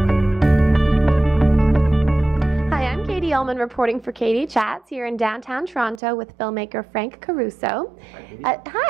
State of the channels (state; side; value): drops out; left; at 6.0 s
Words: Hi, I'm Katie Ullman reporting for KD Chats here in downtown Toronto with filmmaker Frank Caruso.